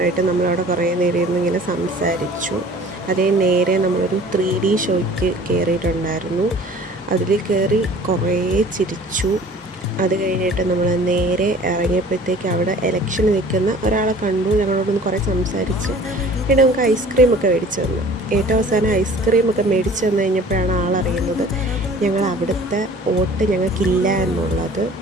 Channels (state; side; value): normal; both; correlation 0.48